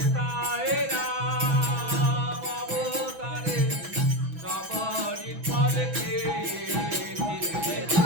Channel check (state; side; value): late; left; 6.1 ms